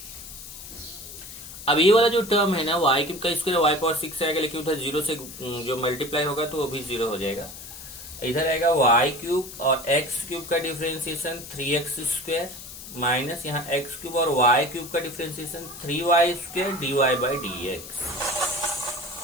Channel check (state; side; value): noise; left; hiss, 13 dB below the sound